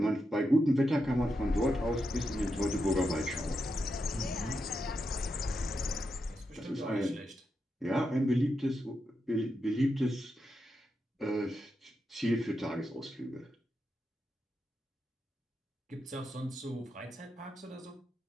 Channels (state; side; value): normal; both; correlation 0.86